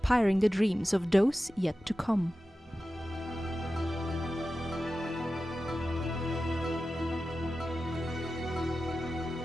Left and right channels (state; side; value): normal; both; correlation 0.93